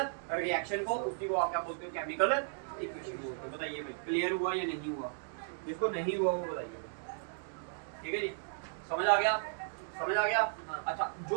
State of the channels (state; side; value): silent; left; digital silence